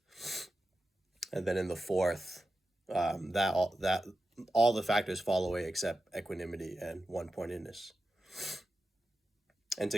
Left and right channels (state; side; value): normal; both; correlation 0.91